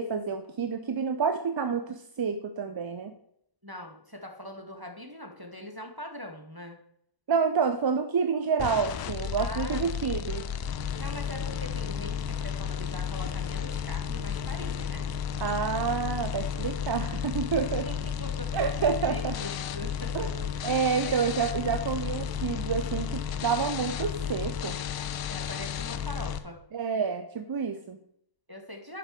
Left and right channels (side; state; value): left; late; 1.0 ms